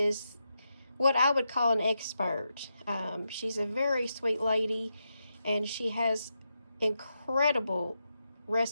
what I would call an expert. She's a very sweet lady, and she has incredible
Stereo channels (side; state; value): both; inverted; correlation -0.86